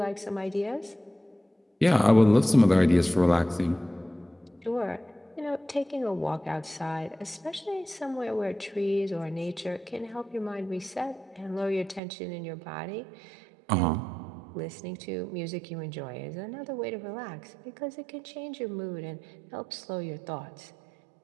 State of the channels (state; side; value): drops out; left; at 12.0 s